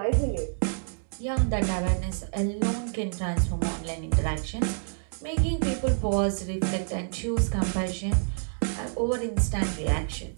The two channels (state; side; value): silent; left; digital silence